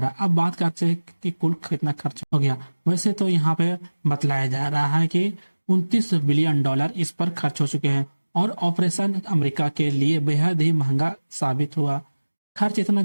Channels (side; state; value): both; inverted; correlation -1.00